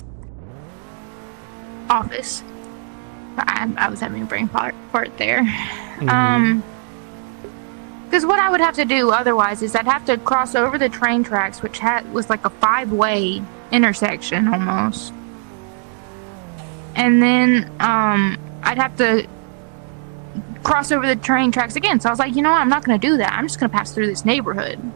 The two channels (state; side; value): silent; left; 55 dB below the other